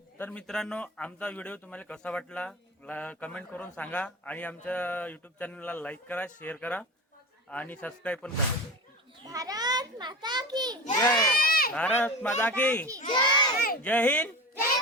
मित्रांनो, आमचा व्हिडिओ तुम्हाला कसा वाटला कमेंट करून सांगा आणि आमच्या यूट्यूब चॅनलला लाईक करा, शेअर करा आणि सबस्क्राईब पण करा. भारत माता की जय भारत माता की जय. जय हिंद जय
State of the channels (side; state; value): both; normal; correlation 0.28